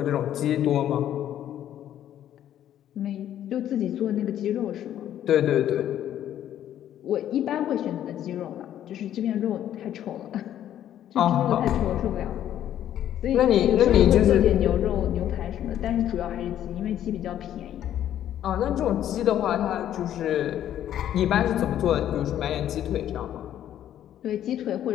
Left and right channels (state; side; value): quieter; right; 11.2 dB